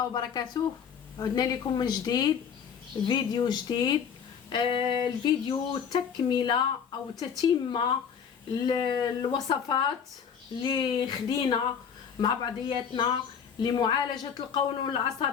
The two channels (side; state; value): right; quieter; 7.4 dB